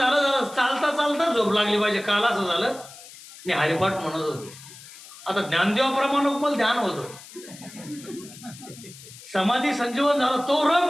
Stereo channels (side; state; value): left; noise; hiss, 18 dB below the sound